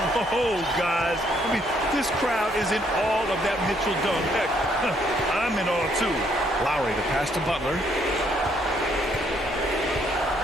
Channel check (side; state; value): left; noise; hum, 20 dB below the sound